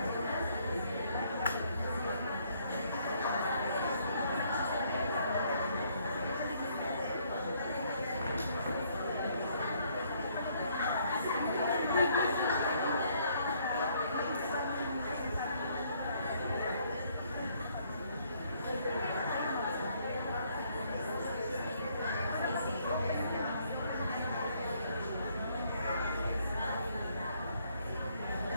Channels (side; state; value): both; inverted; correlation -0.67